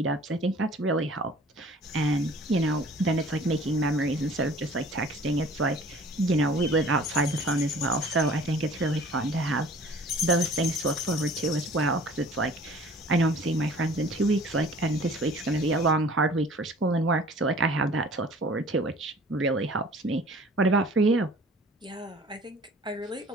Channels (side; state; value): both; normal; correlation 0.49